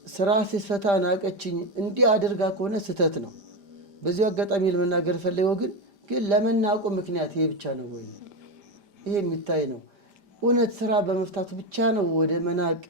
ስራ ሲፈታ ናቀችኝ እንዲህ አድርጋ ከሆነ ስህተት ነው። በዚሁ አጋጣሚ ለመናገር ፈልገው ግን ለመናቁ ምክንያት ይሄ ብቻ ነው ወይ? ይሄ የሚታይ ነው። እውነት ስራ በመፍታቱ ብቻ ነው ወደ መናቅ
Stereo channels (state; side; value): late; left; 5.0 ms